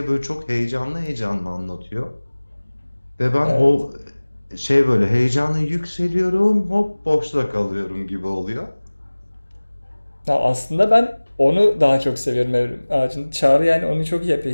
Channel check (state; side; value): inverted; both; correlation -1.00